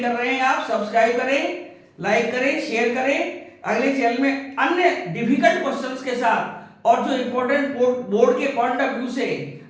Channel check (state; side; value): identical; both; correlation 1.00